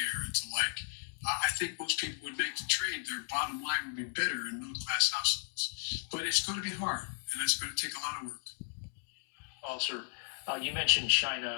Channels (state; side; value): silent; right; 54 dB below the other